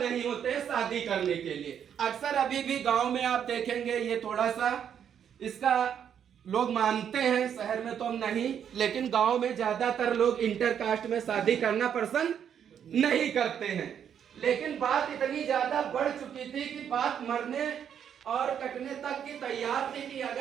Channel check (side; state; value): left; quieter; 8.6 dB